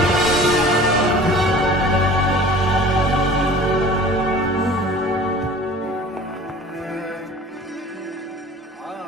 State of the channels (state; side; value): normal; both; correlation 0.44